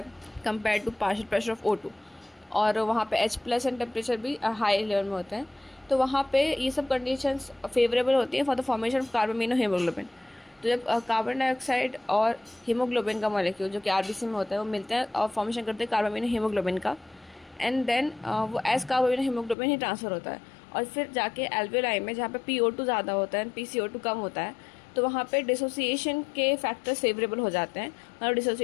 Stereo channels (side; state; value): right; drops out; at 19.6 s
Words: compare to partial pressure of O2, और वहाँ पे H+ एंड टेम्परेचर भी हाई लेवल में होते हैं, तो वहाँ पे ये सब कंडीशंस फेवरेबल होती हैं for the formation of carbamino haemoglobin. तो जब कार्बन डाइऑक्साइड और हीमोग्लोबिन का मॉलिक्यूल जो कि आरबीसी में होता है वो मिलते हैं और फॉर्मेशन करते हैं कार्बामिनो हीमोग्लोबिन का, एंड देन वो एज कार्बामिनो हीमोग्लोबिन ही ट्रांसफ़र होता है और फिर जाके एल्वेओलाई में जहाँ पे PO2 ज़्यादा होता है PCO2 कम होता है, तो वहाँ पे डिसोसिएशन के फैक्टर्स फेवरेबल हो जाते हैं और